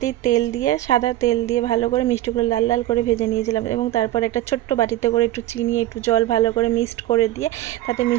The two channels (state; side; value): quieter; left; 14.9 dB